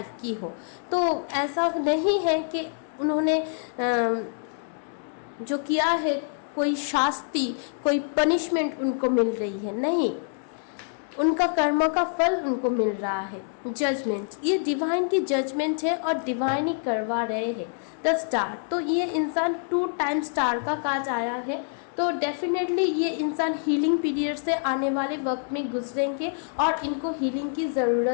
की हो। तो ऐसा नहीं है कि उन्होंने जो किया है कोई शास्ति, कोई पनिशमेंट उनको मिल रही है, नहीं, उनका कर्म का फल उनको मिल रहा है। जजमेंट, ये डिवाइन की जजमेंट है और डिवाइन ही करवा रहे हैं। द स्टार, तो ये इंसान 2 टाइम स्टार का काज आया है, तो डेफिनेटली ये इंसान हीलिंग पीरियड से आने वाले वक्त में गुजरेंगे और इनको हीलिंग की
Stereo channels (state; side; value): silent; right; 61 dB below the other